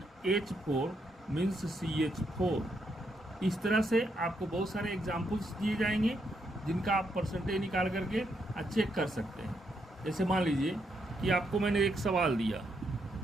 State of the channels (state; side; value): normal; both; correlation 0.78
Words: मीन्स CH4। इस तरह से आपको बहुत सारे एग्जाम्पल्स दिए जाएंगे जिनका आप परसेंटेज निकाल करके चेक कर सकते हैं। जैसे मान लीजिए कि आपको मैंने एक सवाल दिया,